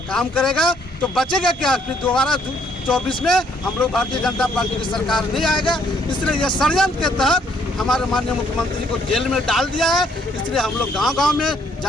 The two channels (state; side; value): normal; both; correlation 0.67